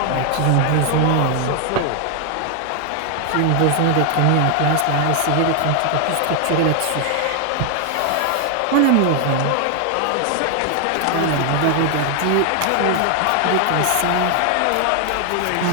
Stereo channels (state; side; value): different; both; correlation 0.00